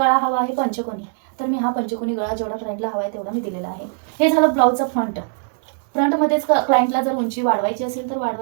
हवा आहे पंचकोनी, तर मी हा पंचकोनी गळा जेवढा क्लायंटला हवा आहे तेवढा मी दिलेला आहे। हे झालं ब्लाऊजचा फ्रंट। फ्रंटमध्येच क्लायंटला जर उंची वाढवायची असेल तर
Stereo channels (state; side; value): silent; left; 65 dB below the other